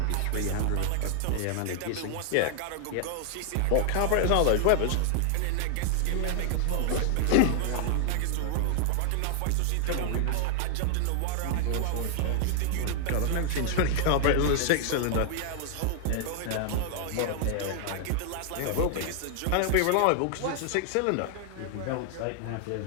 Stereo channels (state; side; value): different; both; correlation 0.00